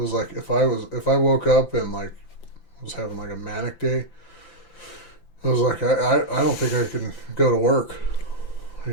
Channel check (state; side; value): late; right; 5.9 ms